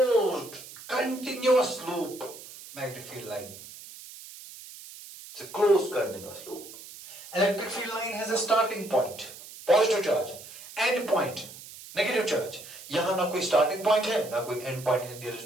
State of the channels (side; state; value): right; noise; hiss, 16 dB below the sound